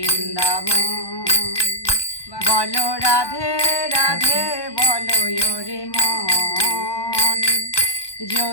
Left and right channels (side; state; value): right; late; 1.2 ms